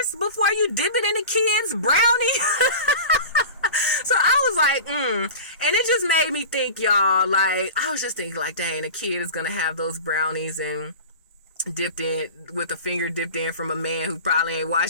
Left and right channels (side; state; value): both; inverted; correlation -0.34